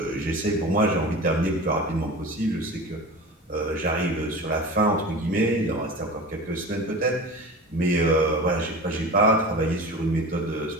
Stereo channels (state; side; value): normal; both; correlation 0.33